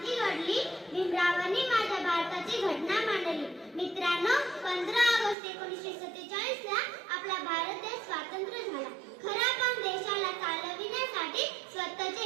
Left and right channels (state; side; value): drops out; left; at 5.4 s